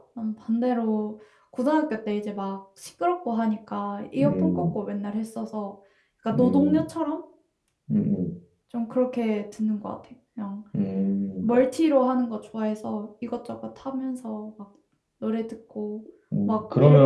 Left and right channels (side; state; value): both; identical; correlation 1.00